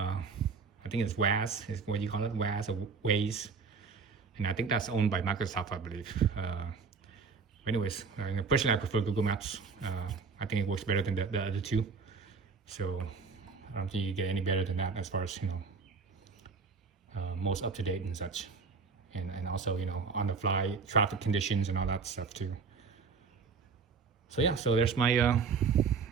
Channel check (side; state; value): left; quieter; 5.2 dB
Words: think it's WAS, is what you call it, WAS or Waze. And I think that's owned by Microsoft, I believe. Anyways, personally, I prefer Google Maps. I think it works better than the other two. So I don't think you get any better than that as far as, most up to date and such. And also, on the fly, traffic conditions and all that stuff too. So yeah, so there's my